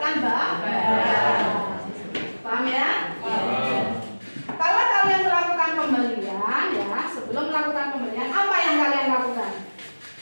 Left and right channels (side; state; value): both; inverted; correlation -1.00